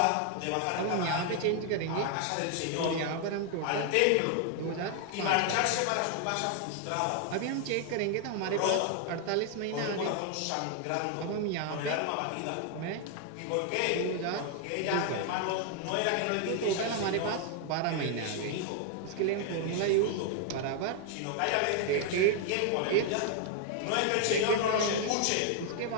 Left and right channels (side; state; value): both; different; correlation 0.00